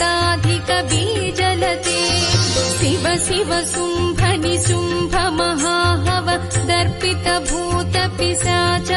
बीजलते शिव शिव शुम्भनि शुम्भ महाहव दर्पित भूत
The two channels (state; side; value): identical; both; correlation 1.00